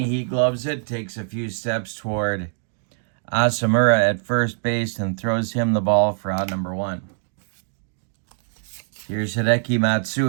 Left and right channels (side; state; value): left; silent; digital silence